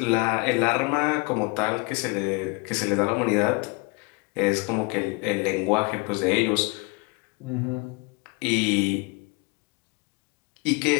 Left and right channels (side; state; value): right; quieter; 29.2 dB